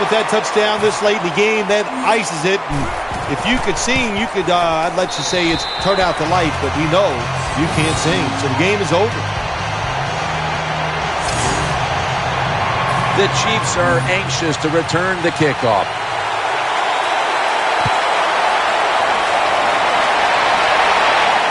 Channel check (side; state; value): both; identical; correlation 1.00